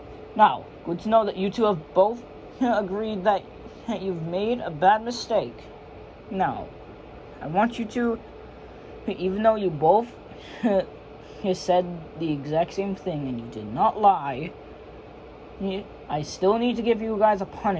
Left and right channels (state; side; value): identical; both; correlation 1.00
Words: Now, good to know that you two have both agreed that you've made a bad mistake. Now, I want you to, even though you both said the exact same thing and you did not lie, I still need to give you guys a